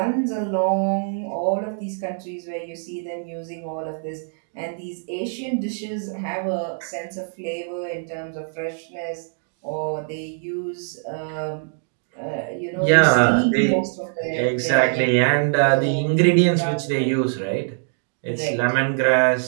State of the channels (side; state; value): left; silent; digital silence